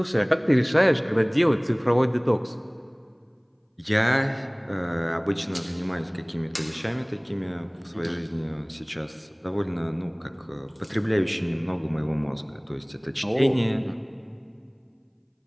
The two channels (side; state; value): both; identical; correlation 1.00